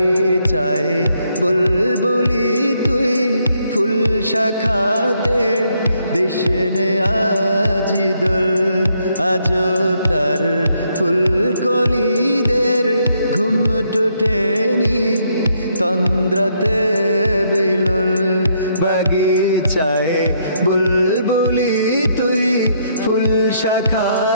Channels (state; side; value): inverted; both; correlation -0.73